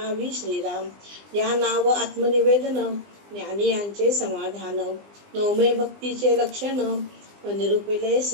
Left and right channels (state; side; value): late; left; 20 ms